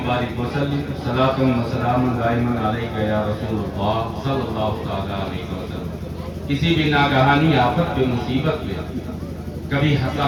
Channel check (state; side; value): identical; both; correlation 1.00